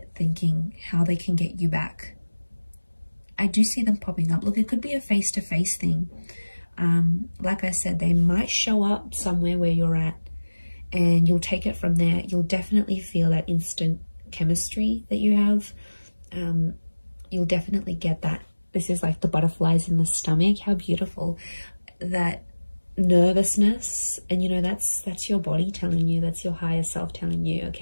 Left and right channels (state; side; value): inverted; both; correlation -1.00